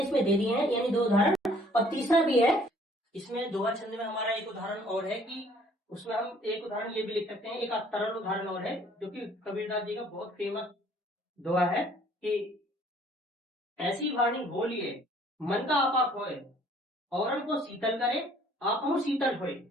इसमें दे दिए हैं, यानी 2 उदाहरण। और तीसरा भी है इसमें दोहा छंद में हमारा एक उदाहरण और है कि उसमें हम एक उदाहरण ये भी लिख सकते हैं, एक तरल उदाहरण और है जो कि कबीरदास जी का बहुत फेमस दोहा है कि ऐसी वाणी बोलिए मन का आपा खोए, औरन को शीतल करे आप हम शीतल होए।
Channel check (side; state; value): both; normal; correlation 0.58